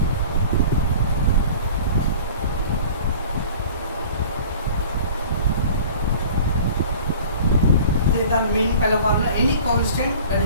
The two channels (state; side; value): inverted; both; correlation -0.44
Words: The main pile of formula, any constant that